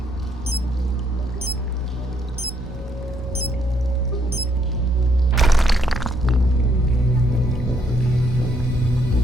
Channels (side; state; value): both; normal; correlation 0.72